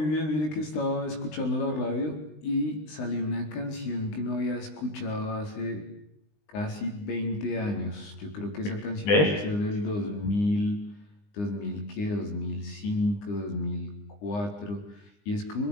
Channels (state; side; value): late; right; 20 ms